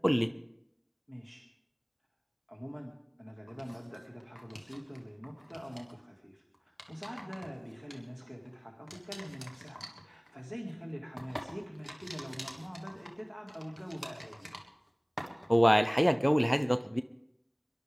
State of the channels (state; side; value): identical; both; correlation 1.00